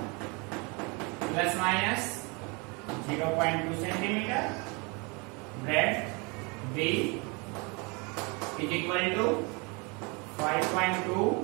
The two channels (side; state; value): left; quieter; 30.0 dB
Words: plus minus 0.2 centimeter. Breadth B is equal to 5.2